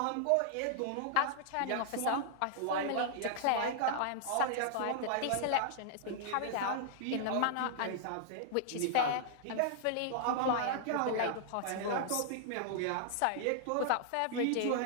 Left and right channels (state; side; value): different; both; correlation -0.01